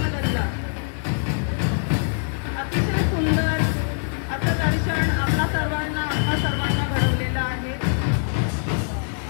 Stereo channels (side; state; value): right; silent; 63 dB below the other